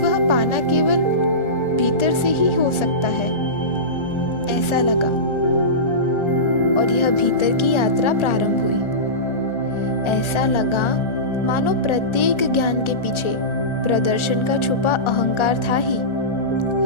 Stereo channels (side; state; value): right; late; 1.4 ms